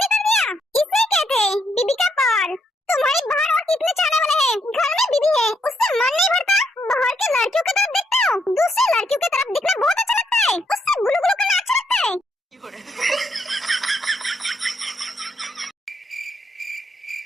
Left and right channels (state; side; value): normal; both; correlation 0.76